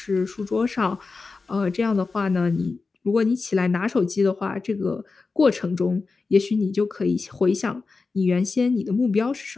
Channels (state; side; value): quieter; right; 4.2 dB